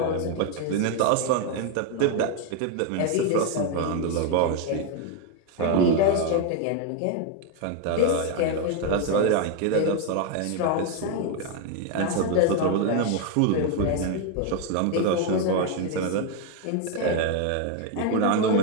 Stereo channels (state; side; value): different; both; correlation 0.01